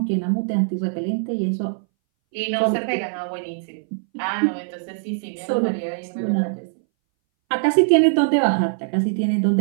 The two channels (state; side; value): silent; left; 62 dB below the other